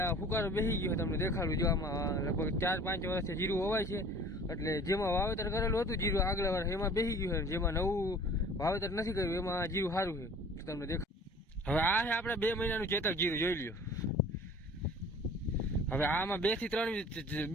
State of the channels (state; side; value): normal; both; correlation 0.47